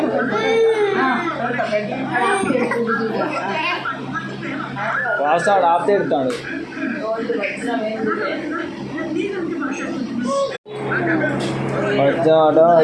వాస్తాడు ఆపితే ఎడతాడు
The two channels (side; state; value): both; identical; correlation 1.00